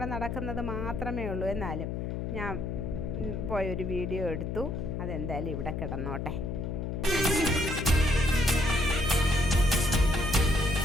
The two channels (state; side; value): noise; left; hum, 3 dB below the sound